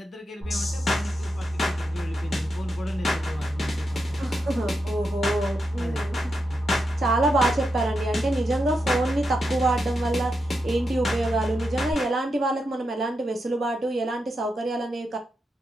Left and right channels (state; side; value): normal; both; correlation 0.85